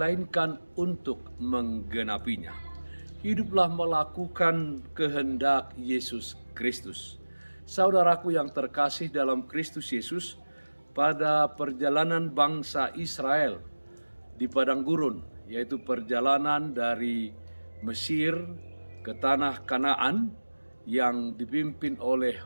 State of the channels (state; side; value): inverted; both; correlation -1.00